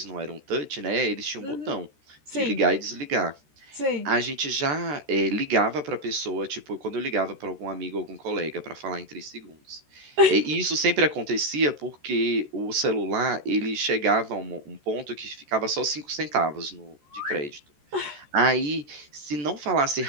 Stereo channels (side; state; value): left; late; 13 ms